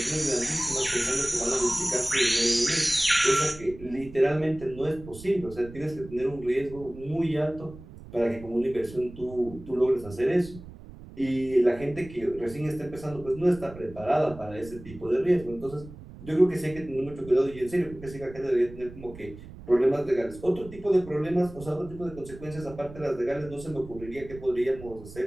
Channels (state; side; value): noise; right; rumble, 16 dB below the sound